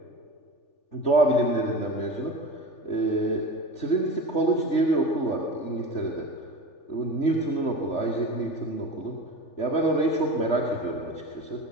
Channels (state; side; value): late; right; 3.4 ms